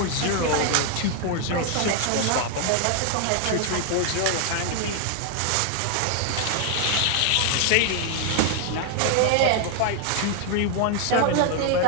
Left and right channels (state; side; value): different; both; correlation 0.00